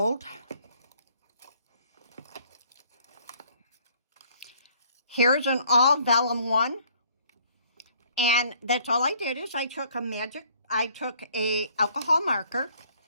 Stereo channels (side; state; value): both; inverted; correlation -0.60